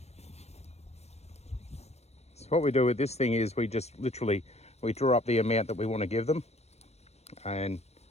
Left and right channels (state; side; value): late; right; 0.31 ms